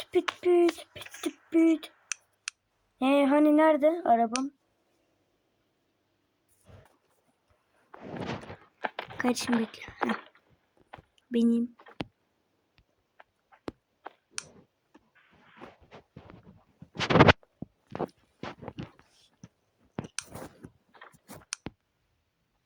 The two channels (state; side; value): identical; both; correlation 1.00